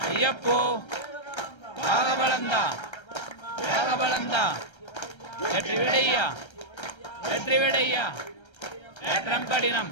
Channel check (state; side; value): late; right; 1.3 ms